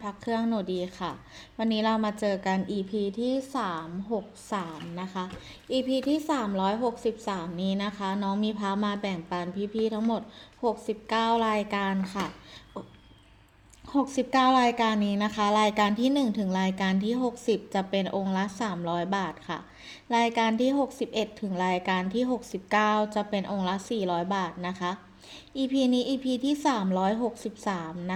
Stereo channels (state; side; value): identical; both; correlation 1.00